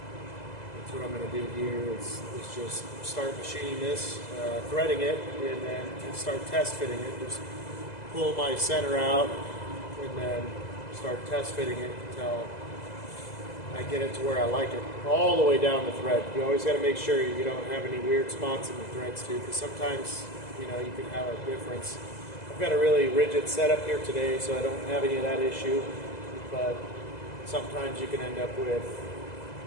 That's what I'm going to do here is just start machining this, threading it, and then start test fitting it. Just pull my center out and then start test fitting it until I get it to where I like it, all the way down the thread. You always got to make sure you don't have any weird spots in the threads too, because sometimes you can have a difference. I've got a really rigid setup here today, so I don't have any of that issue, but sometimes you can end up with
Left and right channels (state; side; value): late; right; 2.0 ms